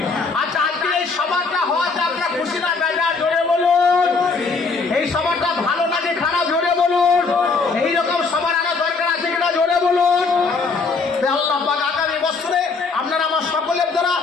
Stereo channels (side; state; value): right; quieter; 4.4 dB